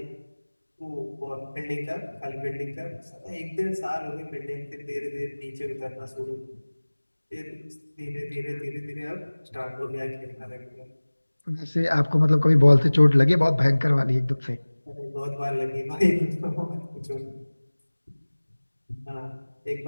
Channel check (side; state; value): both; inverted; correlation -1.00